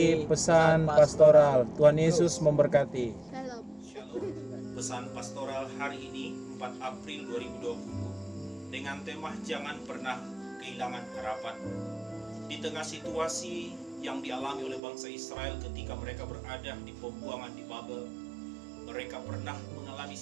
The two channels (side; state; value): left; drops out; at 14.8 s